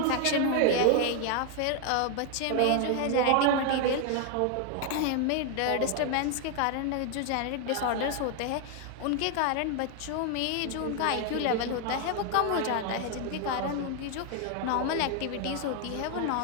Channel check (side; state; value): both; different; correlation 0.00